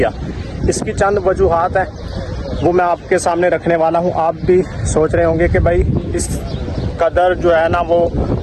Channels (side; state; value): both; identical; correlation 1.00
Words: इसकी चंद वजूहात हैं, वो मैं आपके सामने रखने वाला हूँ। आप भी सोच रहे होंगे कि भाई इस कदर जो है ना वो